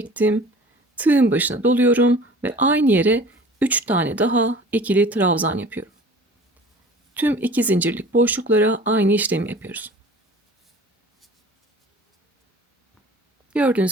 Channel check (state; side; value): normal; both; correlation 0.44